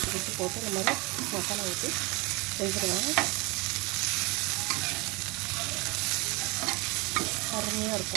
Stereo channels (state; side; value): quieter; left; 26.8 dB